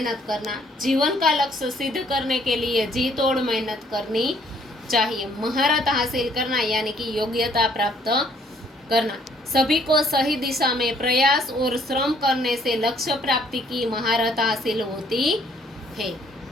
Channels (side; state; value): both; normal; correlation 0.63